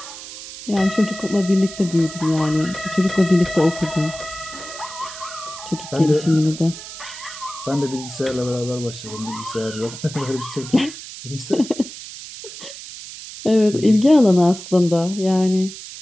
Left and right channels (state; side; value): noise; right; hiss, 13 dB below the sound